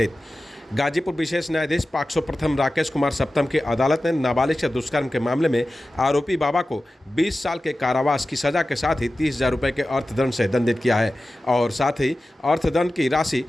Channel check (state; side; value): normal; both; correlation 0.95